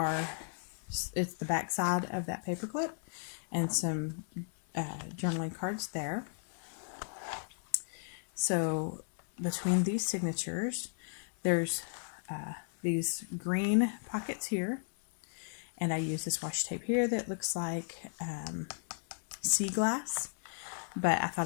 it's the back side of that paper clip and some journaling cards there. So between these signatures, there's these green pockets here, and I use this washi tape here that looks like sea glass, but I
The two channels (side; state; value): right; silent; 55 dB below the other